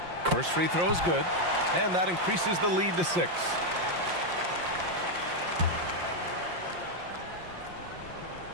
First free throw is good, and that increases the lead to 6.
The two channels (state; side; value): late; left; 5.7 ms